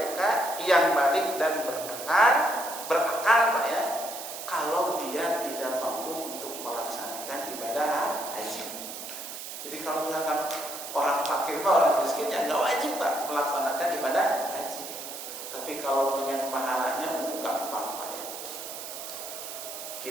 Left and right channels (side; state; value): right; noise; hiss, 9 dB below the sound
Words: yang balik dan berakal Pak ya, kalau dia tidak mampu untuk melaksanakan ibadah haji. Jadi kalau misalkan orang fakir Pak, orang miskin ya nggak wajib Pak melaksanakan ibadah haji. Tapi kalau pengen pahalanya gampang Pak ya.